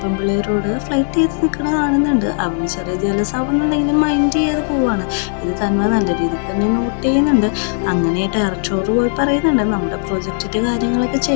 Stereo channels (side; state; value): right; silent; digital silence